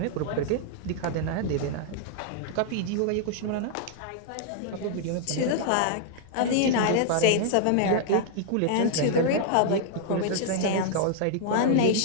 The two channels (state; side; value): different; both; correlation -0.01